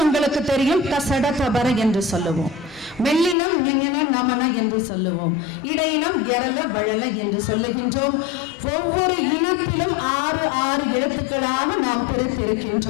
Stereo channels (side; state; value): right; drops out; at 3.4 s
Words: உங்களுக்கு தெரியும், கசட கபர என்று சொல்லுவோம். மெல்லினம் ஞஞன நமன என்று சொல்லுவோம். இடையினம் எரல வழல என்று சொல்லுகின்றோம். ஒவ்வொரு இனத்திலும் 6 எழுத்துக்களாக நாம்